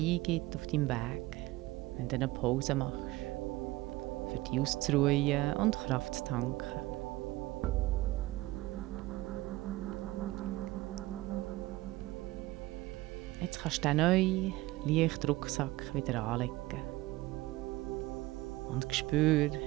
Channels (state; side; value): quieter; left; 18.9 dB